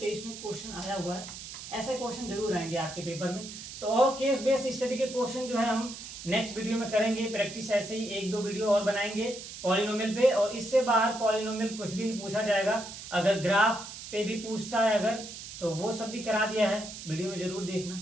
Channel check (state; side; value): noise; right; hiss, 11 dB below the sound